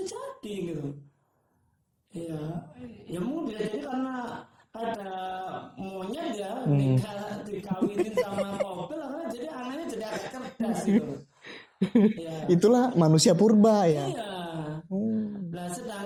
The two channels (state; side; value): identical; both; correlation 1.00